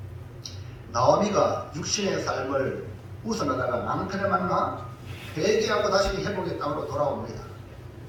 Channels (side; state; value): both; identical; correlation 1.00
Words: 나오미가 육신의 삶을 웃어나다가 남편을 만나 회개하고 다시 회복의 땅으로 돌아옵니다.